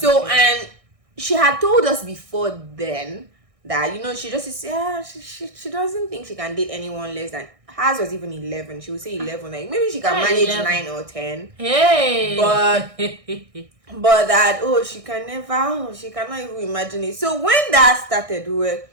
and she had told us before then that, you know, she just said, she doesn't think she can date anyone less than, hers was even 11. She would say 11, like maybe she can manage 11. 9 or 10. Hey, but that she cannot even imagine it. So when that started, we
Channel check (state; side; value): late; left; 1.6 ms